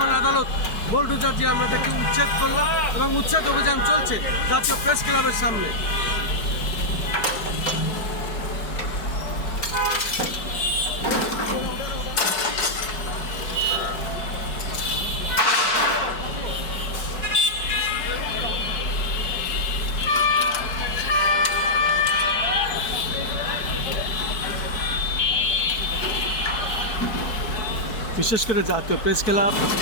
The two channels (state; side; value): late; right; 4.6 ms